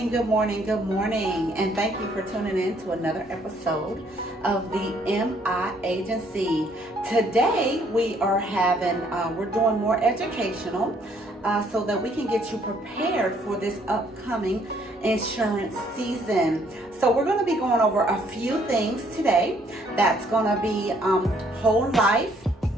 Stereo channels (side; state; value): both; normal; correlation 0.65